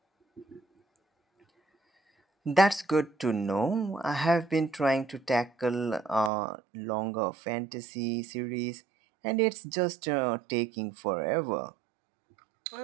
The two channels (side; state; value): left; drops out; at 6.3 s